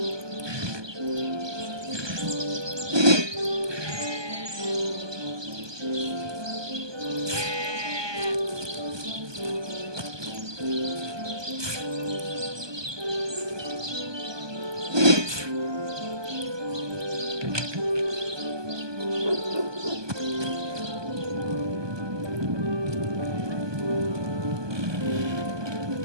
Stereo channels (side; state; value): left; late; 1.2 ms